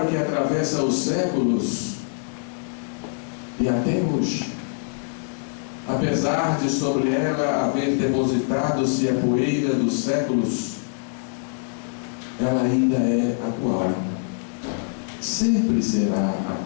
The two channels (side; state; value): right; silent; digital silence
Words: que atravessa os séculos e até hoje, apesar de sobre ela haver depositado-se a poeira dos séculos, ela ainda é atual, sempre será